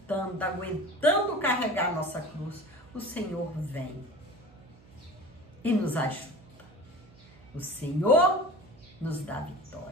carregar nossa cruz, o Senhor vem e nos ajuda. O Senhor nos dá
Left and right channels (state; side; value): noise; right; hum, 25 dB below the sound